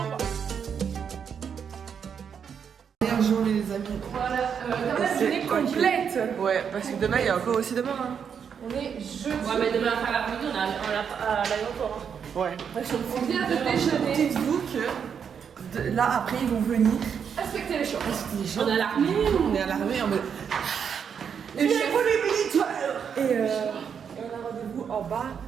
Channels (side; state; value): left; quieter; 7.3 dB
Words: Journée les amis. Voilà, la journée complète. Ouais, parce que demain il y a encore aussi demain. Hein. On est jeudi. Ouais, mais demain après l'après-midi, on est à l'aéroport. Ouais. On vient de déjeuner. Dites-vous que là après ils vont venir. Respectez les choses. On est à l'armée. On est à l'armée en mode. Et Les pour les militaires. Et on a rendez-vous en bas